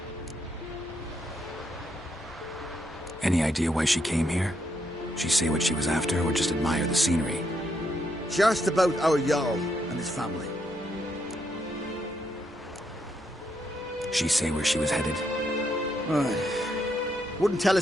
Any idea why she came here? She say what she was after, or just admire the scenery? Just about our Jarl and his family. She say where she was headed? Wouldn't tell a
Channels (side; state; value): both; normal; correlation 0.77